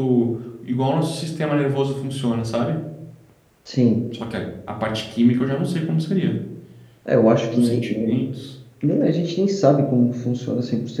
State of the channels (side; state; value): both; identical; correlation 1.00